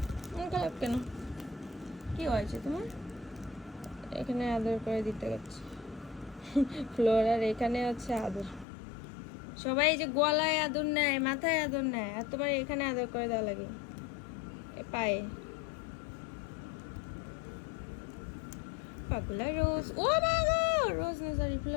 মন খারাপ কেন? কি হয়েছে তোমার? এখানে আদর করে দিতে গেছে ফ্লোরার, এখানে হচ্ছে আদর। সবাই যে গলায় আদর নেয়, মাথায় আদর নেয়, আর তোমার এখানে আদর করে দেওয়া লাগে পায়ে। পাগলা রোজ, ও বাবা, রোজ না সরি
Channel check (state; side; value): drops out; right; at 8.7 s